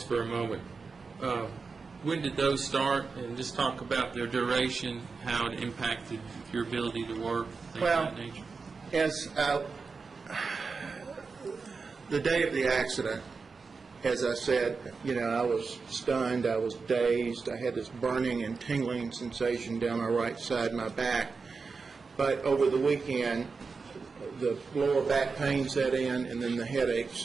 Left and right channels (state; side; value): quieter; left; 4.7 dB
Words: for a moment. When did those start? And just talk about their duration, how it impacted your ability to work, things Well, of that nature. As the day of the accident, as I said, I was stunned, I was dazed, I had this burning and tingling sensation down my right side of my back. But over the weekend, the lower back pain set in, and then the